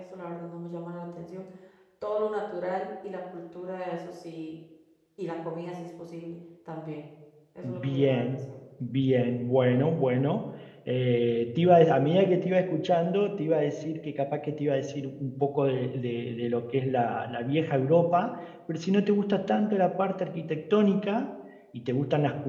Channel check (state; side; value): identical; both; correlation 1.00